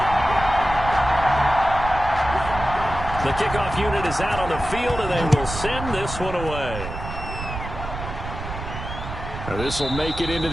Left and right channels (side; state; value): right; noise; rumble, 8 dB below the sound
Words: The kickoff unit is out on the field, and they will send this one away. This will make it into